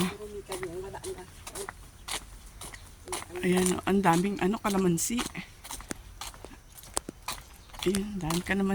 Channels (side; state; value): both; identical; correlation 1.00